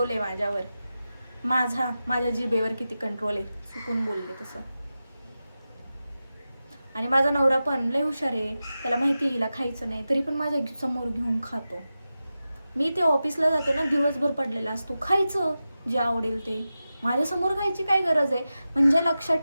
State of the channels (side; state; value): both; inverted; correlation -0.93